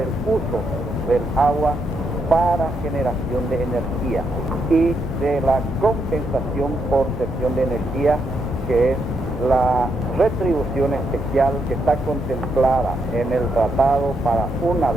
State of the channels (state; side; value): normal; both; correlation 0.79